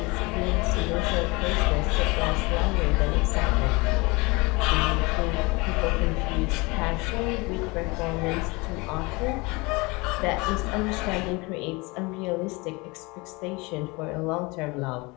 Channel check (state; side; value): quieter; right; 25.4 dB